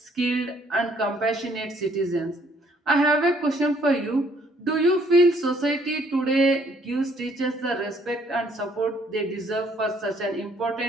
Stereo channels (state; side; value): normal; both; correlation 0.64